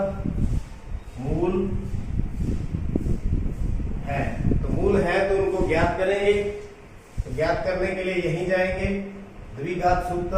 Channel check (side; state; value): both; identical; correlation 1.00